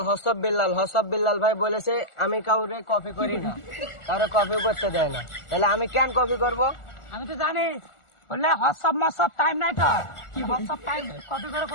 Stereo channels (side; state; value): right; late; 1.4 ms